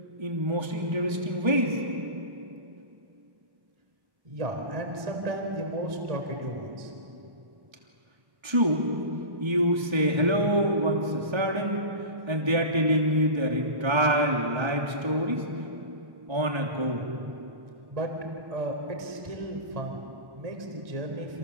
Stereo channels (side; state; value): left; late; 1.3 ms